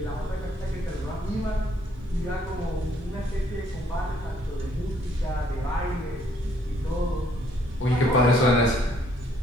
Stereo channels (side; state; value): both; normal; correlation 0.66